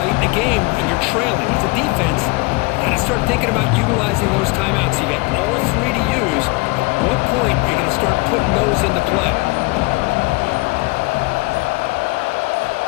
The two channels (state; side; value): quieter; right; 25.7 dB